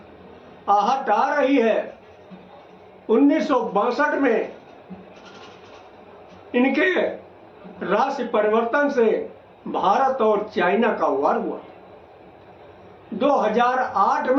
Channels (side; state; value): both; identical; correlation 1.00